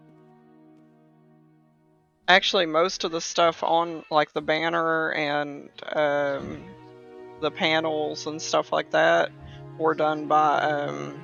Actually, most of the stuff on like the banner and the panels and stuff like that were done by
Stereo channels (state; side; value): identical; both; correlation 1.00